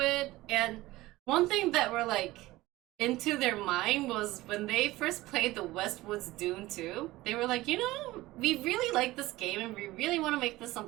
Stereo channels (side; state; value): left; quieter; 18.3 dB